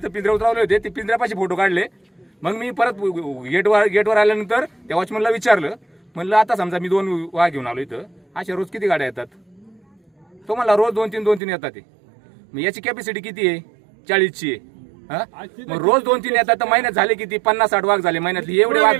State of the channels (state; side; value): drops out; left; at 11.4 s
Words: पिंजरे उतरवले होते ते पिंजऱ्यापाशी फोटो काढले. मग मी परत गेटवर आल्यानंतर त्या वॉचमनला विचारलं, म्हणलं आता समजा मी 2 वाघ घेऊन आलो इथं, अशा रोज किती गाड्या येतात. तो मला रोज 2-3 येतात. मग याची कॅपॅसिटी किती आहे, 40ची आहे. मग रोज 2-3 येतात, तर महिन्यात झाले किती, 50-60 वाघ झाले महिन्यातले. एवढे वाघ